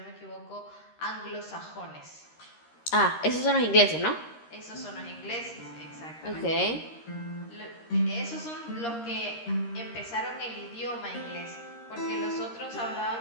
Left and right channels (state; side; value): late; right; 13 ms